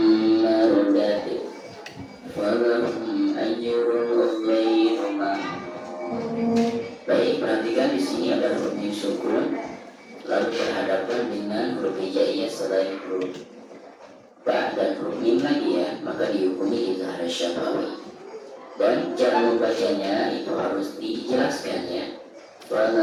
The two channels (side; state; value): both; identical; correlation 1.00